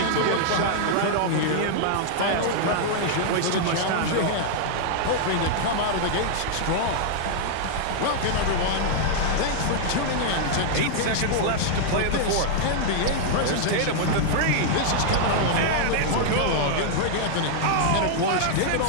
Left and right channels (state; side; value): different; both; correlation -0.01